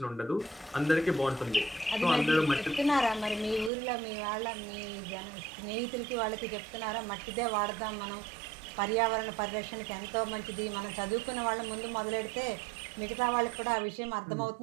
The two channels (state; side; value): drops out; left; at 3.7 s